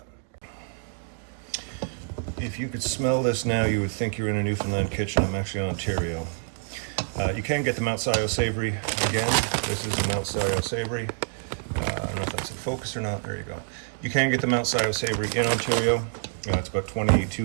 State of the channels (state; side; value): silent; left; digital silence